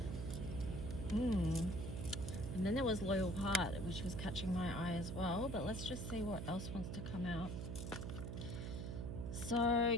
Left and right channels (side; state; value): right; noise; hum, 5 dB below the sound